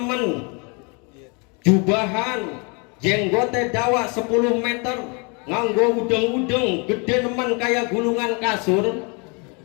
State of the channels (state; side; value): quieter; right; 32.7 dB